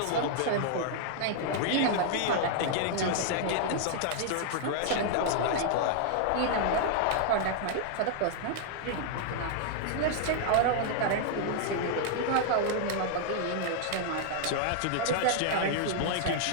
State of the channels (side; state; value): both; different; correlation -0.01